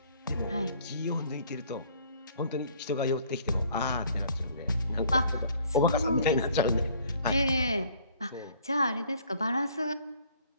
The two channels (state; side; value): inverted; both; correlation -0.58